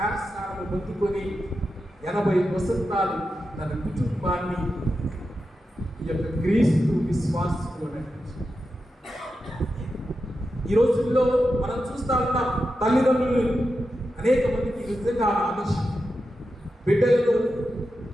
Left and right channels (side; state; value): both; normal; correlation 0.89